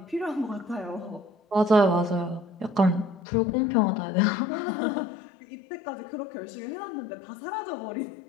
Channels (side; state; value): right; drops out; at 3.2 s